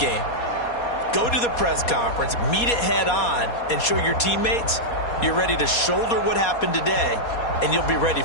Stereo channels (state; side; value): late; right; 4.2 ms